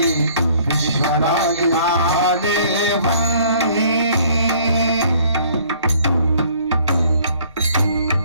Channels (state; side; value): inverted; both; correlation -0.58